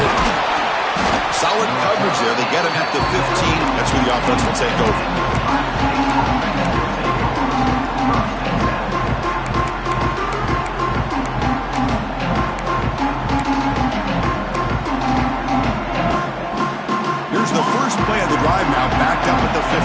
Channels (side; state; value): both; identical; correlation 1.00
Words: Solid coverage there. They get him at the 15. That's where the offense will take over. Here's the first play of the drive now, backed up at the